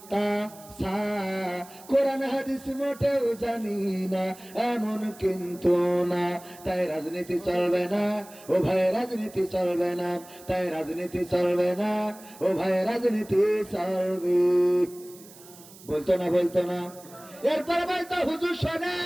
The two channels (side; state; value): right; noise; hiss, 21 dB below the sound